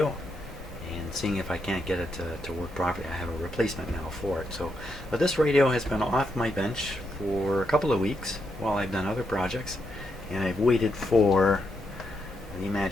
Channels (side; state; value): both; normal; correlation 0.81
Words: and seeing if I can't get it to work properly. I have a replacement now for it. But this radio has been off my bench for a couple of weeks while I've done other projects, and I've waited for the